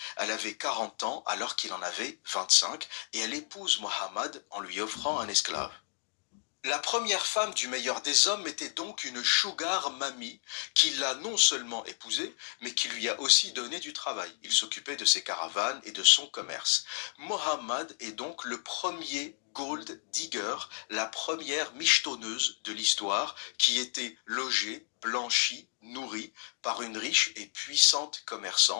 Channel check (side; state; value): right; silent; 56 dB below the other